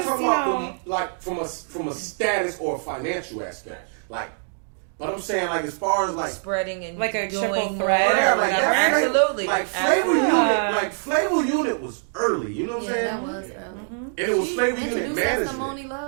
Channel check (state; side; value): silent; left; 63 dB below the other